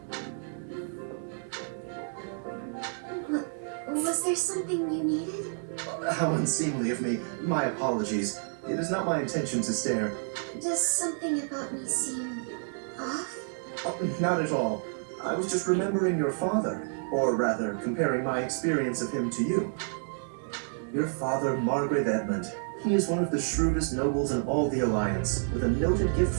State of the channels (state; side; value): silent; left; 58 dB below the other